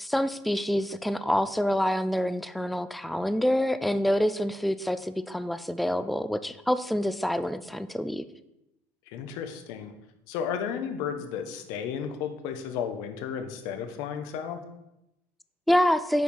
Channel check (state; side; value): normal; both; correlation 0.88